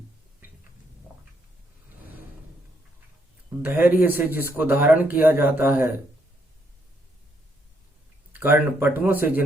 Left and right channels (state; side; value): normal; both; correlation 0.74